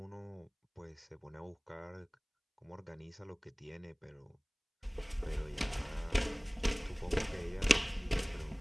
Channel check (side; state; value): both; identical; correlation 1.00